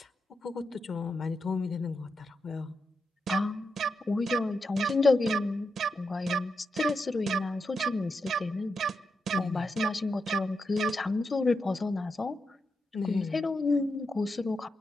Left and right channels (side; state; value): both; normal; correlation 0.86